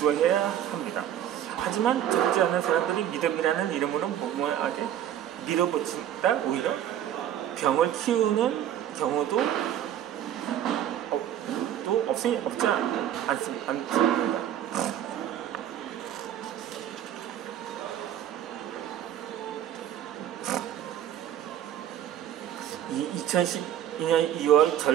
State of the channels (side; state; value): left; quieter; 10.9 dB